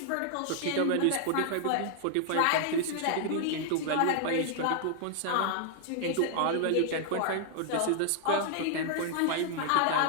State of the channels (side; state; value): both; different; correlation 0.00